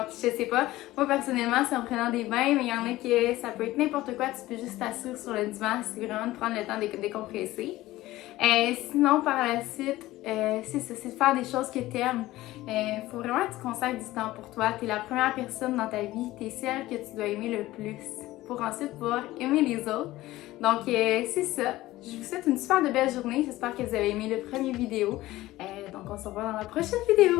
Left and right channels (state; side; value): quieter; right; 16.9 dB